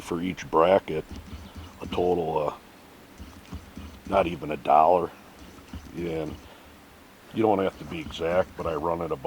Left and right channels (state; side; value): identical; both; correlation 1.00